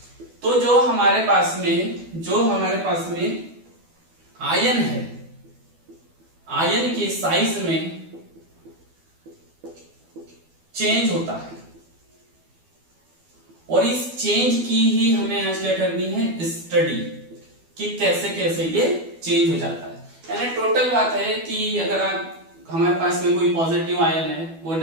तो जो हमारे पास में आयन है, आयन के साइज में चेंज होता है। और इस चेंज की ही हमें आज क्या करनी है, स्टडी, कि कैसे कैसे ये चेंज हो जाता है। यानी टोटल बात है कि अगर हमारे पास में कोई पॉजिटिव आयन है, वो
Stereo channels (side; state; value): left; late; 12 ms